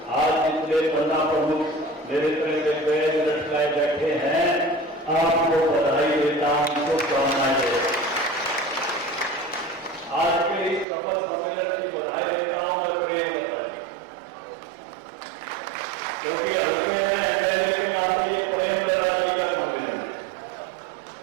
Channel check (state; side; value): drops out; left; at 10.9 s